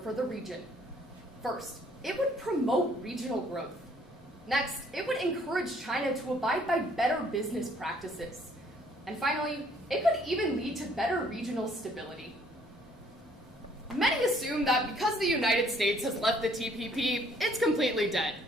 the region. First, it would promote regional growth. Next, it would encourage China to abide by better business practices. And finally, it could even lead to better regional stability. Many assume that because the United States has left the TPP, it's completely dead.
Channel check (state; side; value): normal; both; correlation 0.62